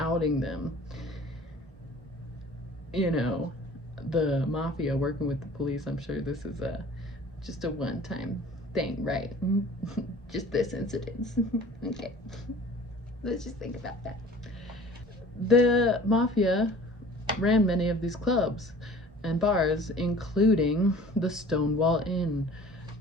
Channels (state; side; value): normal; both; correlation 0.47